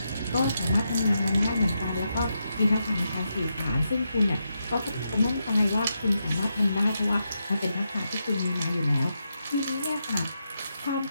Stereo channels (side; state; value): both; inverted; correlation -0.84